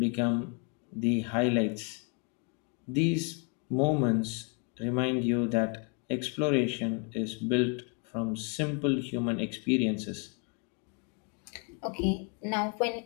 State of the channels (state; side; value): quieter; right; 35.8 dB